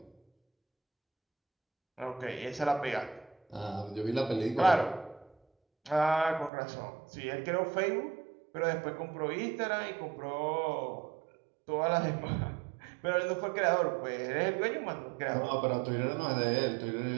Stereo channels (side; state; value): left; drops out; at 6.5 s